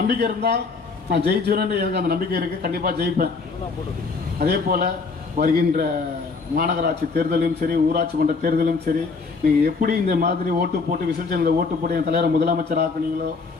இருந்தால் நான் ஜெயிச்சுவேன்னு எனக்கு அந்த நம்பிக்கை இருக்குது, கண்டிப்பாக ஜெயிப்பேன். அதே போல் வருகின்ற மாநகராட்சி தேர்தலும் சரி, ஊராட்சி மன்ற தேர்தலும் சரி, நீங்கள் எப்படி இந்த மாதிரி ஓட்டு போட்டு விசர்ஜனில் ஓட்டு போட்டு என் தலைவரை முதலமைச்சர் ஆக்குனீங்களோ,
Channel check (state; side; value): quieter; right; 4.5 dB